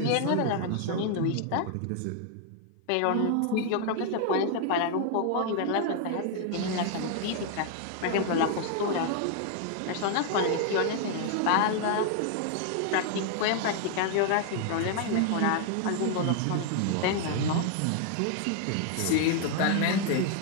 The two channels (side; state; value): both; different; correlation 0.00